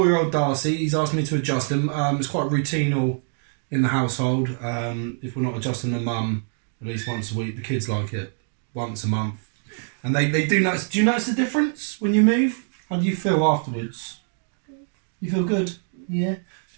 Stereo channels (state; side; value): silent; left; 57 dB below the other